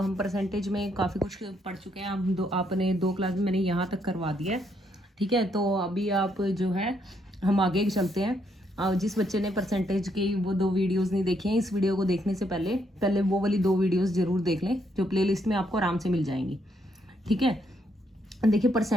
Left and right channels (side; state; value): both; normal; correlation 0.74